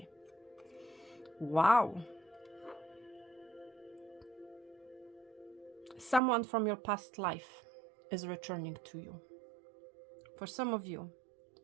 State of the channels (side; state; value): left; drops out; at 6.2 s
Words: Wow. Someone from your past life is returning to you. For some of you,